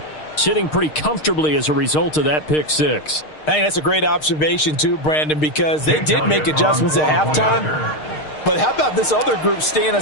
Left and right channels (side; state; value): right; late; 6.5 ms